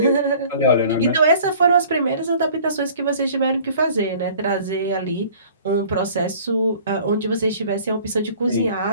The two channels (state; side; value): inverted; both; correlation -0.50